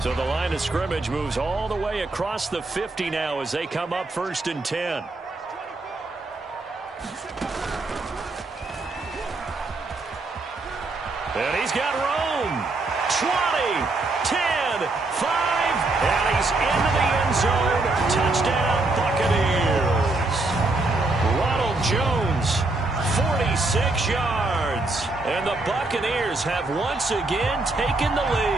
So the line of scrimmage moves all the way across the 50 now as they come up 1st and 10. And he's got room. 20, 10, 5, and he's into the end zone. Touchdown, Buccaneers. Ronald Jones, 46 yards. And the Buccaneers have once again taken the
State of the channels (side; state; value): left; quieter; 3.2 dB